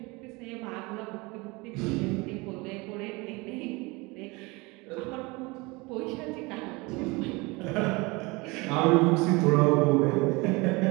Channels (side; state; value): left; quieter; 25.1 dB